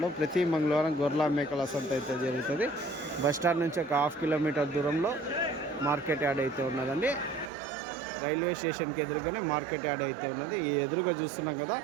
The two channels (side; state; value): left; drops out; at 7.5 s